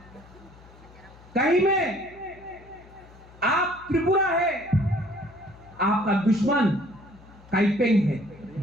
कहीं में आप त्रिपुरा है, आपका दुश्मन काइपेंग है,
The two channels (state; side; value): noise; left; hum, 23 dB below the sound